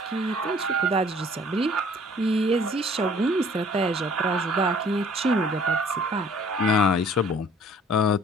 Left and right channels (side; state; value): both; normal; correlation 0.55